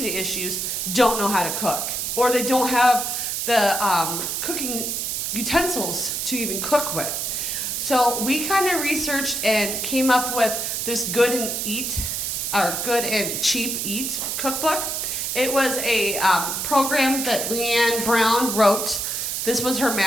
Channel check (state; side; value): noise; right; hiss, 2 dB below the sound